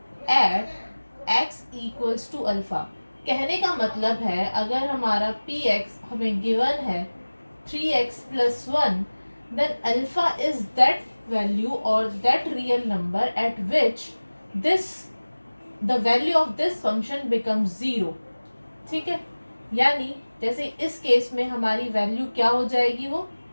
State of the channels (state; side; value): inverted; both; correlation -1.00